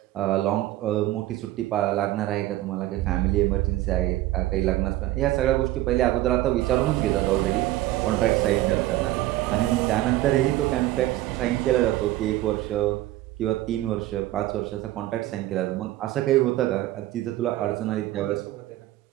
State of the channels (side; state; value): left; quieter; 15.7 dB